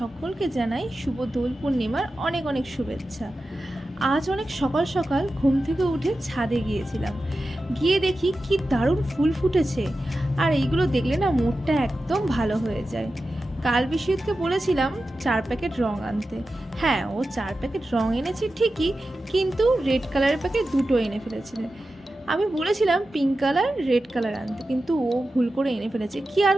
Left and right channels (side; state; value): both; normal; correlation 0.93